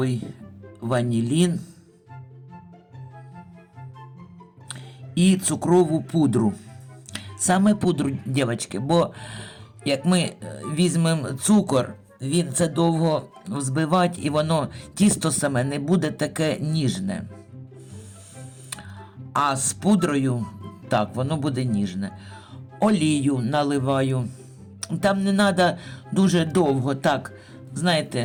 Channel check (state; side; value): identical; both; correlation 1.00